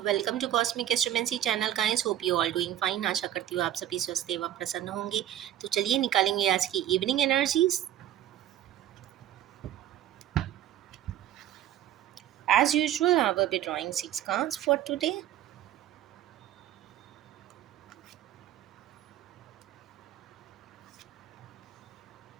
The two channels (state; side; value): quieter; left; 12.0 dB